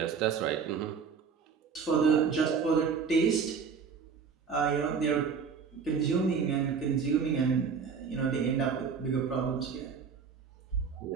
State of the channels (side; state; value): left; quieter; 6.1 dB